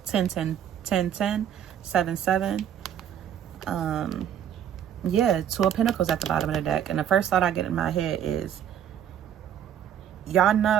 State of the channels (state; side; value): quieter; left; 9.5 dB